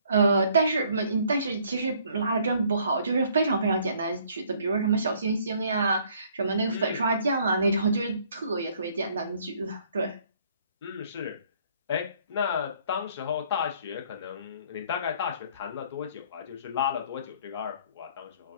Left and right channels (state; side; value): inverted; both; correlation -0.61